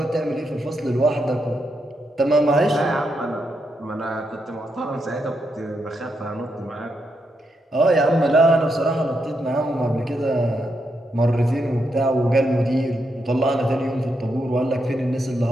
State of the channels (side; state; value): both; normal; correlation 0.82